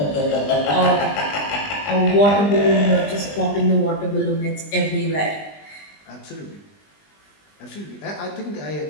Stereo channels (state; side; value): late; right; 20 ms